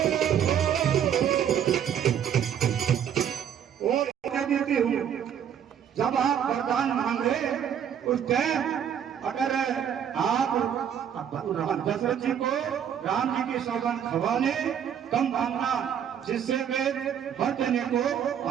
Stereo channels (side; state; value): left; quieter; 8.9 dB